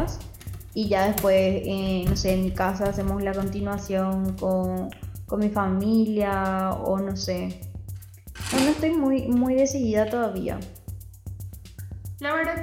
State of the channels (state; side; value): identical; both; correlation 1.00